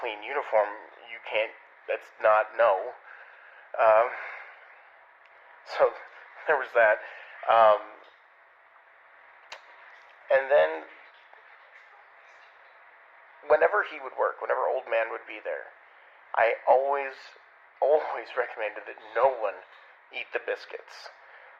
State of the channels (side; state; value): both; identical; correlation 1.00